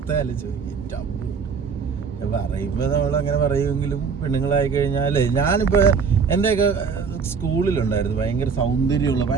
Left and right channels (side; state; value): left; quieter; 5.8 dB